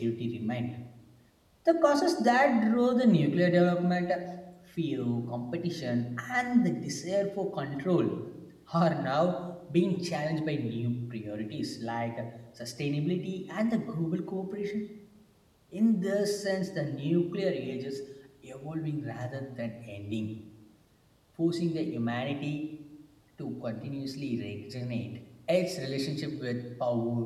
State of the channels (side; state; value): both; identical; correlation 1.00